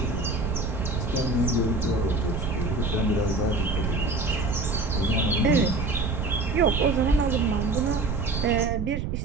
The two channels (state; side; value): noise; right; rumble, 2 dB below the sound